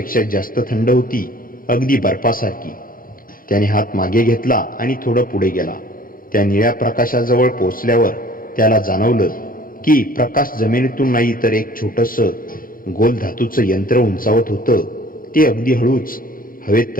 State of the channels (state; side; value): late; right; 0.41 ms